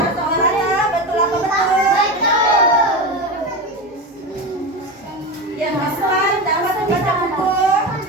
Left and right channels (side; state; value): both; normal; correlation 0.21